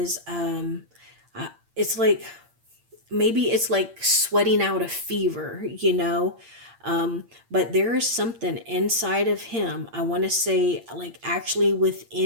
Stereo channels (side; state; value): left; late; 8.7 ms